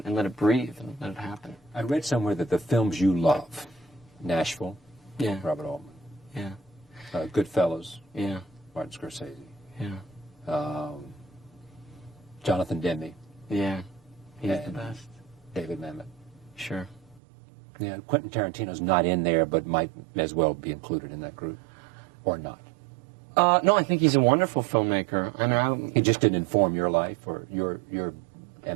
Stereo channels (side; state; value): left; drops out; at 17.2 s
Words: let it breathe and let it happen. I read somewhere that the films you love, Nashville, Robert Altman. Yeah. Goodfellas. Yeah. Martin Scorsese. Yeah. Jonathan Demme. Yeah. He's the best. David Mamet. Sure. Yeah. Quentin Tarantino's not in there, but might as well be included in that group, or not. No, I think he's a wonderful filmmaker. I mean, he just didn't inform your life or your